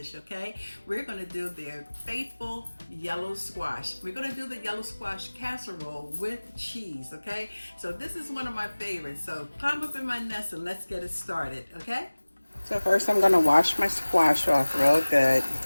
okay? We're going to do their faithful yellow squash. We're going to do the yellow squash casserole with cheese, okay? So this is one of my favorites, so climb up in my nest and let's get it started, okay? So first I'm going to wash my squash off real good,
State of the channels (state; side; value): inverted; both; correlation -1.00